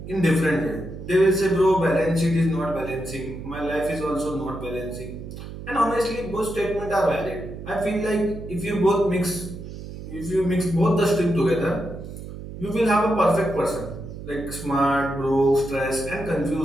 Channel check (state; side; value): noise; right; hum, 11 dB below the sound